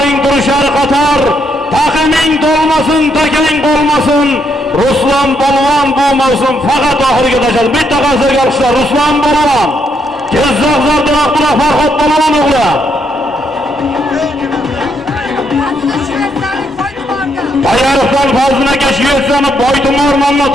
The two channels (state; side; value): normal; both; correlation 0.75